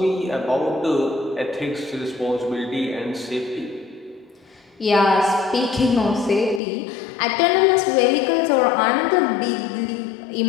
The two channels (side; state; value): right; drops out; at 6.6 s